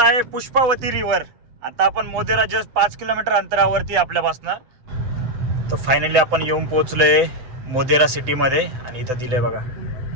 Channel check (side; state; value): left; late; 7.8 ms